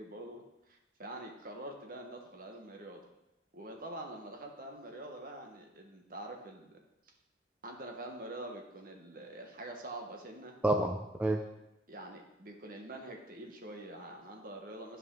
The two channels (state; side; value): normal; both; correlation 0.53